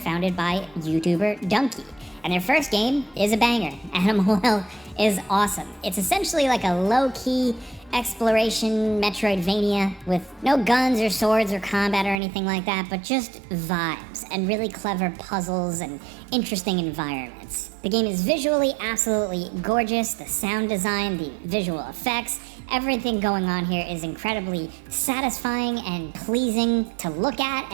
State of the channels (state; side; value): drops out; left; at 12.2 s